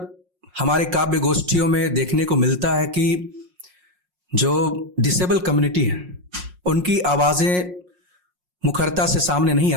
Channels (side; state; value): left; late; 5.6 ms